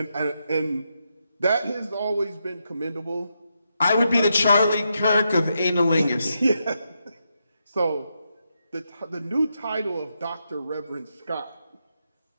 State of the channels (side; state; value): both; inverted; correlation -0.83